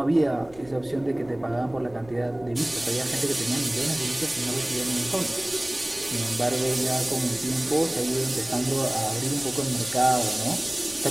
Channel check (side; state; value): left; noise; rumble, 23 dB below the sound